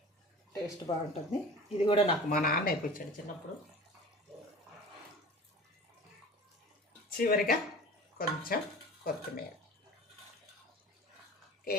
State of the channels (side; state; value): both; normal; correlation 0.39